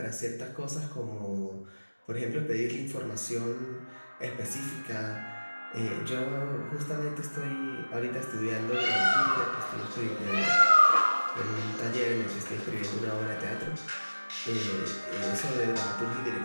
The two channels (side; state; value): both; inverted; correlation -1.00